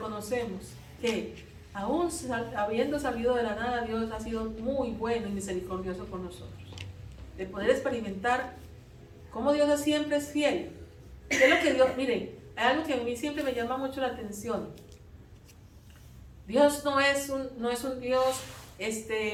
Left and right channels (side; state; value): both; identical; correlation 1.00